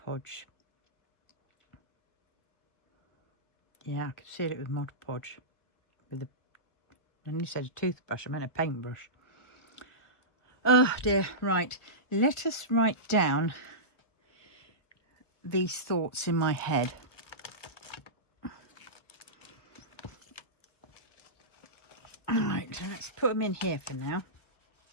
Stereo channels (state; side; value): late; right; 1.3 ms